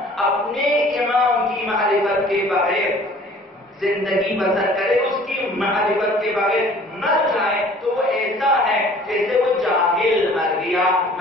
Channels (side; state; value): both; normal; correlation 0.51